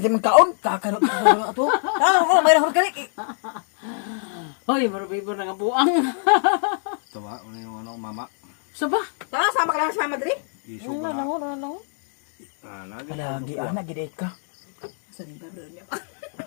sa mga kaon. Kakano ko ato. Ah, may rahol kalit. Hoy, marabay mo nga buang. Ito ba? Ano yung ano, mama? Saba? Ta sama ka lang sa Madrid. Isog na. Ano. Lagi. Lagi ana gid ka. Sa liba bro niya.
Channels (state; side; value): silent; right; 60 dB below the other